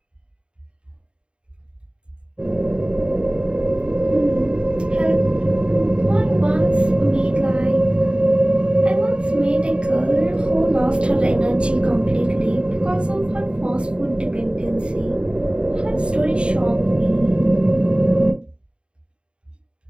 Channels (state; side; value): late; left; 0.054 ms